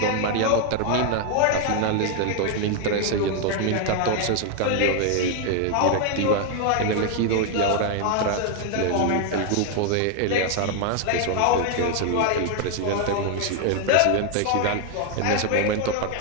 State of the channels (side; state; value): both; different; correlation 0.01